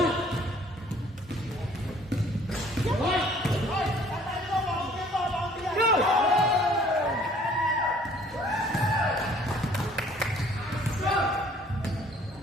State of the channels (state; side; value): normal; both; correlation 0.56